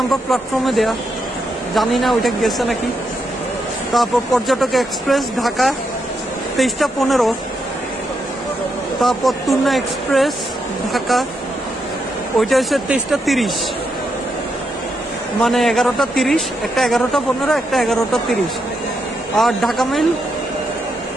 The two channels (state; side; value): normal; both; correlation 0.82